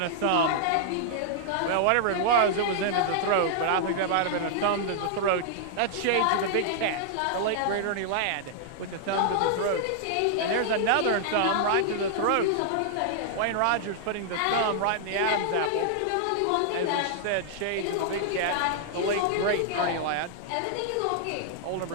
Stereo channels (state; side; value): different; both; correlation -0.01